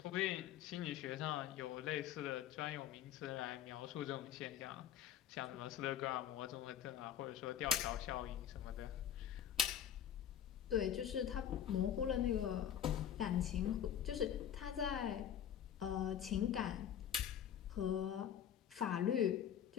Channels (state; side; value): quieter; right; 9.6 dB